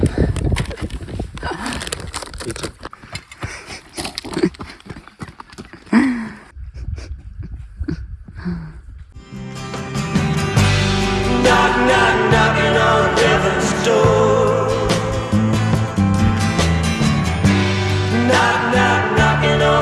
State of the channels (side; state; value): both; identical; correlation 1.00